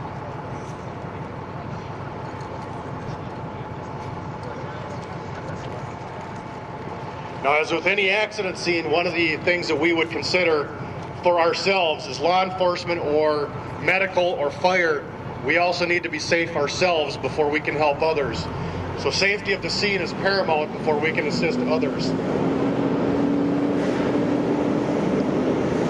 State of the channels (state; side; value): identical; both; correlation 1.00